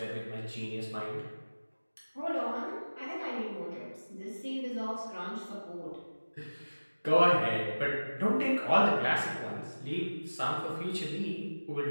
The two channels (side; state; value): both; inverted; correlation -1.00